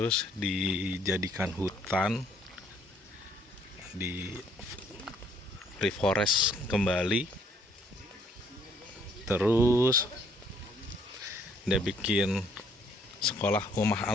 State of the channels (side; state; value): both; normal; correlation 0.65